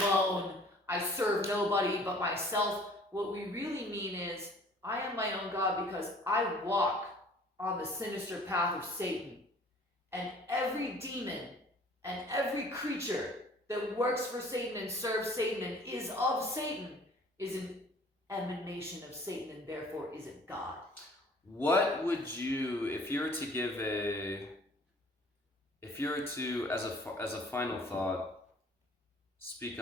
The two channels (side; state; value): both; normal; correlation 0.52